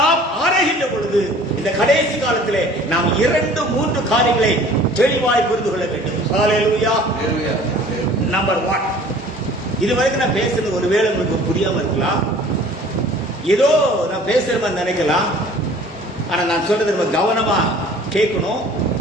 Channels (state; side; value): normal; both; correlation 0.49